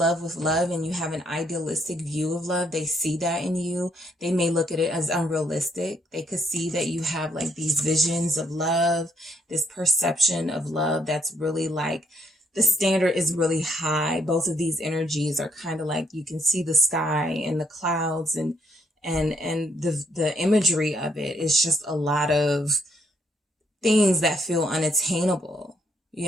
with love and you have an idealistic view of love. They see that in you. They may look at it as unrealistic. They could see that you have like these visions of love, this perception of love that's really like, the standard is really high. Both of these energies are kind of like, you can see the sky and the clouds and the imagery of it is just a lot of things that feel unattainable.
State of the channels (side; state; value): both; normal; correlation 0.71